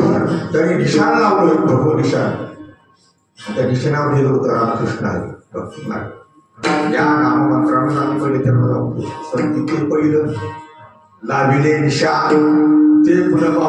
त्यांनी निशाण लावलं, भगव निशाण. त्या निशाणावर लिहिलं होतं रामकृष्ण आहे भक्ती मार्ग. या नाममंत्रानं आम्ही पहिले त्यांना लावतो. पण तिथे पहिलं लाविले निशाण ते पुन्हा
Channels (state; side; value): identical; both; correlation 1.00